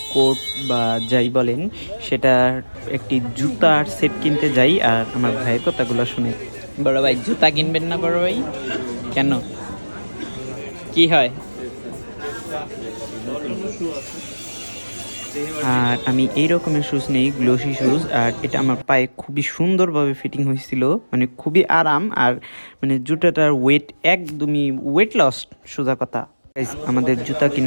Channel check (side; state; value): both; inverted; correlation -1.00